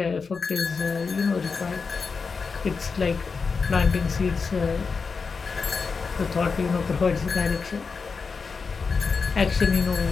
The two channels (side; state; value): right; quieter; 5.0 dB